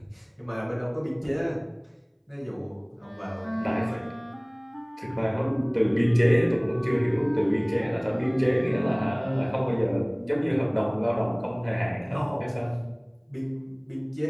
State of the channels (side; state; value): both; identical; correlation 1.00